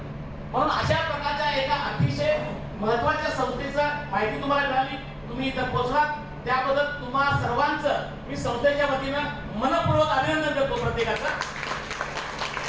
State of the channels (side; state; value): both; identical; correlation 1.00